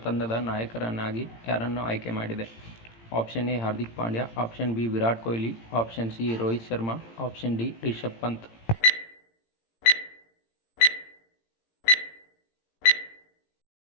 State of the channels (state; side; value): late; right; 18 ms